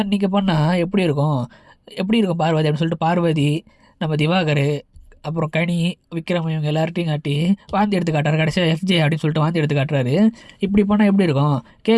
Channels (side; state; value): both; identical; correlation 1.00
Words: நிற்க பண்ணால் எப்படி இருக்கும், எப்படி இருக்கும் பார்வதி அப்படின்னு சொல்லிட்டு பார்வதி, நம்ம திவாகர், அப்புறம் கனி, விக்ரம் இவங்க எல்லார்ட்டையும் காட்டி வாந்தி எடுத்து காட்டுறாரு. கடைசியாக எஃப்ஜே அப்படின்னு சொல்லிட்டு வாந்தி எடுத்து காட்டுறாரு. இப்படி பண்ணால் எப்படி இருக்கும்,